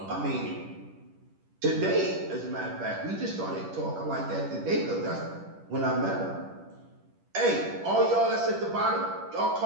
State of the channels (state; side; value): late; left; 10 ms